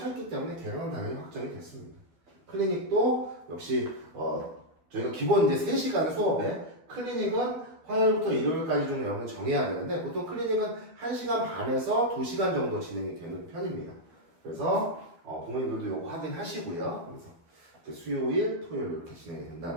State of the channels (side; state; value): left; late; 12 ms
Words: 때문에 개강은 당연히 확정이 됐습니다. 클리닉도 역시 저희가 기본 이제 3시간 수업에 클리닉은 화요일부터 일요일까지 좀 여러분 정해야 되는데 보통 클리닉은 1시간 반에서 2시간 정도 진행이 되는 편입니다. 그래서 부모님들도 이거 확인하시고요. 그래서 수요일, 토요일 이렇게 진행이